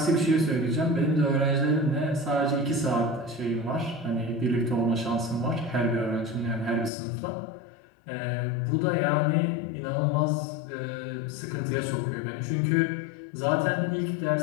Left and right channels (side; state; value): right; drops out; at 6.9 s